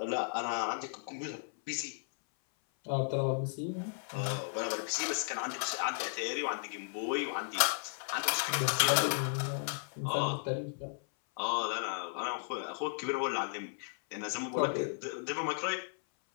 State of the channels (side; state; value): right; silent; 55 dB below the other